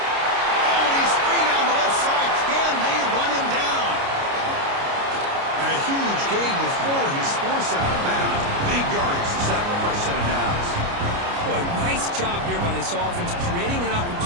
Oh, and he's free down the left side. Can they run him down? And a huge gain before he's forced out of bounds. Big yardage to set up a fresh set of downs. Boy, nice job here by this offense, creating an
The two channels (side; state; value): left; late; 29 ms